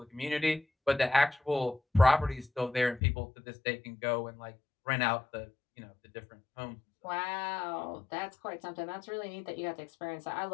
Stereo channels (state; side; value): drops out; right; at 3.0 s